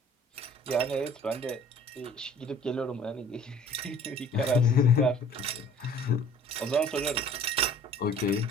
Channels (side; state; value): both; normal; correlation 0.51